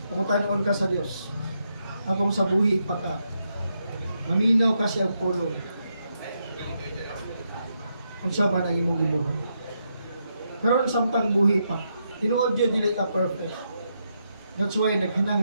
Pangutanon ka sa Dios. Habang sa buhi pa ka, maminaw ka siyang pulong. Unsa man ang imong gibuhat. Pero samtang buhi pa, tinuod yun dili ka perfect. That's why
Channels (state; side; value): inverted; both; correlation -0.81